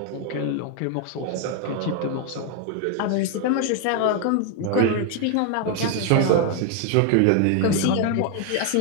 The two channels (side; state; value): both; different; correlation 0.01